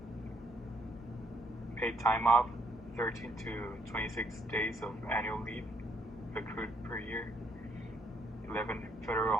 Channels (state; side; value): normal; both; correlation 0.71